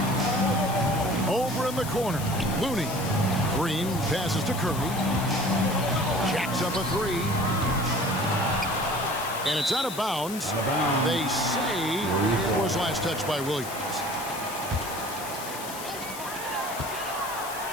Over in the corner, Looney. Green passes to Curry. Jacks up a 3. And it's out of bounds. They say it was last touched by Williams.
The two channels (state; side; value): noise; left; hiss, 11 dB below the sound